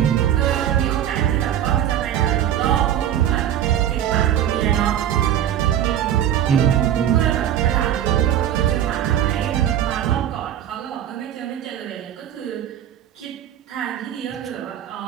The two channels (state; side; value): quieter; left; 10.9 dB